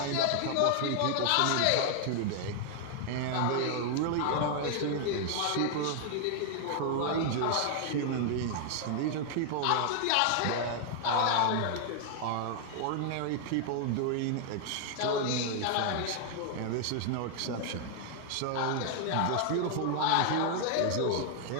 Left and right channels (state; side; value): different; both; correlation 0.00